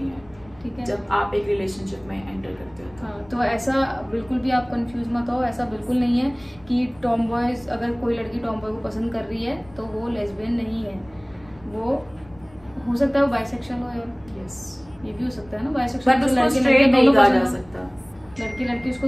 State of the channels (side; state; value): left; noise; rumble, 25 dB below the sound